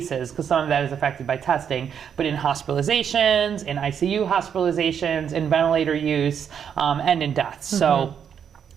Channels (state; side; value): quieter; left; 7.9 dB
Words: because some of that is affected by testing, but in hospitalizations, in ICU hospitalizations, in ventilator use, and in deaths. So